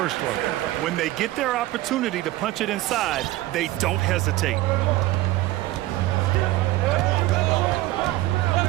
one. When they get their opportunity to punch it inside, they don't hesitate.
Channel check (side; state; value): left; quieter; 16.7 dB